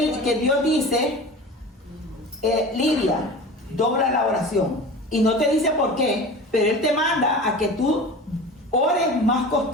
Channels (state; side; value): normal; both; correlation 0.35